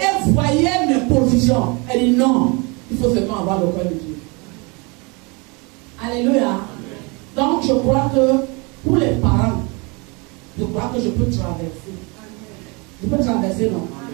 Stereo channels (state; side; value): quieter; left; 29.5 dB